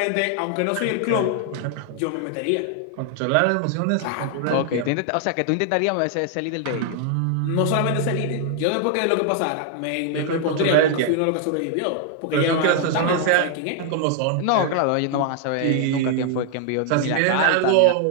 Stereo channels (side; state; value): both; different; correlation 0.00